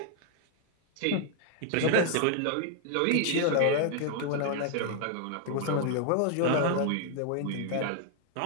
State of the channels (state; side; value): different; both; correlation 0.00